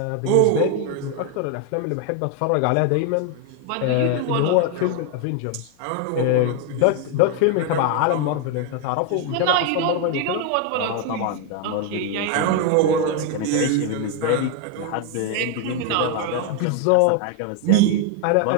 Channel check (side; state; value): both; different; correlation 0.01